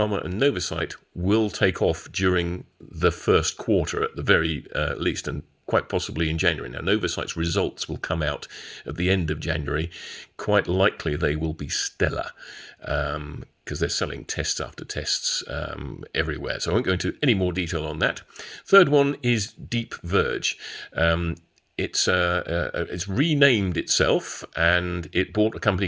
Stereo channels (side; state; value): both; identical; correlation 1.00